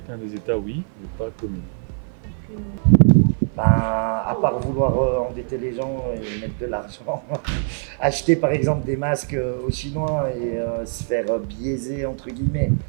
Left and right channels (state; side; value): silent; left; 55 dB below the other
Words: des États, oui, mais pas commune. À part vouloir endetter les gens et mettre de l'argent, acheter par exemple des masques aux Chinois et se faire biaiser entre guillemets